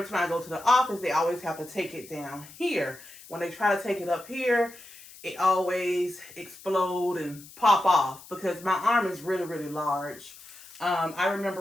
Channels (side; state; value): left; noise; hiss, 19 dB below the sound